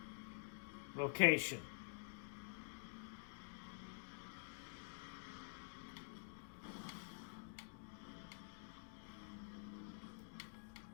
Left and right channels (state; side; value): silent; right; digital silence